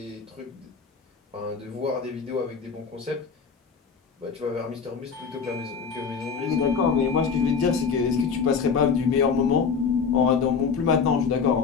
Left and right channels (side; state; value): right; quieter; 5.8 dB